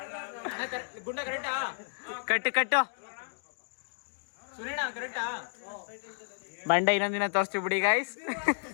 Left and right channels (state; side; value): silent; right; digital silence